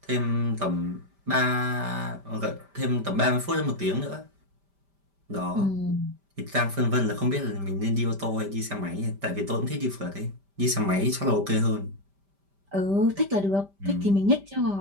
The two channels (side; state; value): left; late; 5.1 ms